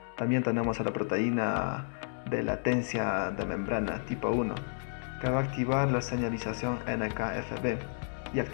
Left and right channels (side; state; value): right; silent; digital silence